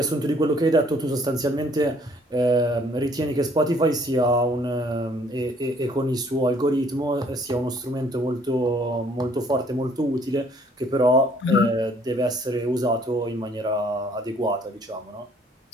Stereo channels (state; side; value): normal; both; correlation 0.61